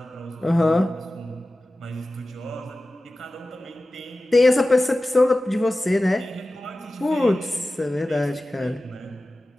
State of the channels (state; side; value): normal; both; correlation 0.96